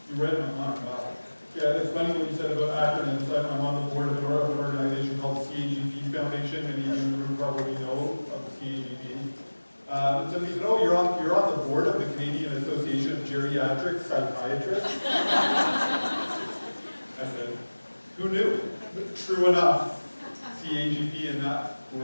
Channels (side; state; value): both; inverted; correlation -1.00